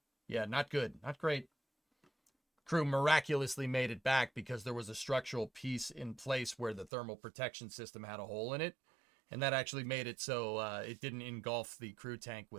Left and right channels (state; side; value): drops out; left; at 6.9 s